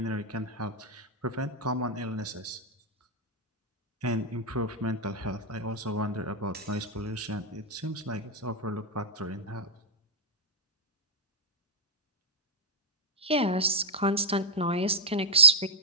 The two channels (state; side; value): normal; both; correlation -0.07